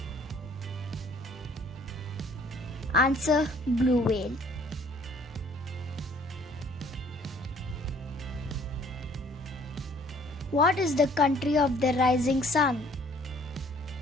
Answer: blue whale. What is the country of the rising sun?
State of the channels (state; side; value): normal; both; correlation 0.57